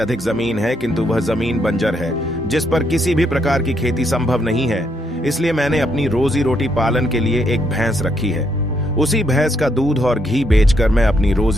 जमीन है, किंतु वह जमीन बंजर है जिस पर किसी भी प्रकार की खेती संभव नहीं है। इसलिए मैंने अपनी रोजी रोटी पालन के लिए एक भैंस रखी है। उसी भैंस का दूध और घी बेचकर मैं अपनी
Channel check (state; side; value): normal; both; correlation 0.75